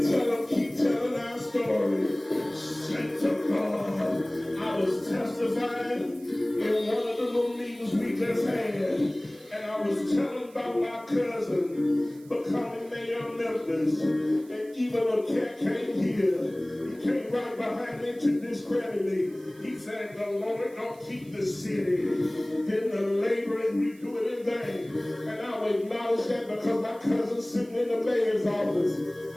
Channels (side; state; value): right; noise; hiss, 26 dB below the sound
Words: tell them, keep telling our story. Thank to God. I was testifying in one of the little meetings we just had, and I was telling about my cousin becoming mayor of Memphis. And even a cat came here. He came right behind me to discredit me. He said, the Lord don't keep the city, then the laborers we do it in vain. And I will acknowledge that because my cousin's sitting in the mayor's office.